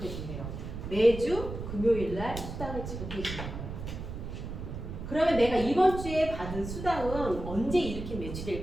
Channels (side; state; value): right; noise; rumble, 7 dB below the sound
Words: 준대요. 매주 금요일 날 수당을 지급해 주는 거예요. 그러면 내가 이번 주에 받은 수당은 언제 일으킨